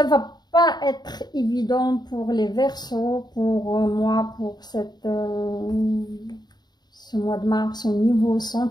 va pas être évident pour les Verseaux, pour moi, pour ce mois de mars au niveau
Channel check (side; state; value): right; late; 0.20 ms